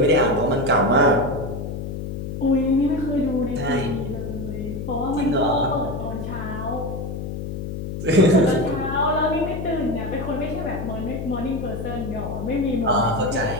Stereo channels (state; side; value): noise; left; hum, 6 dB below the sound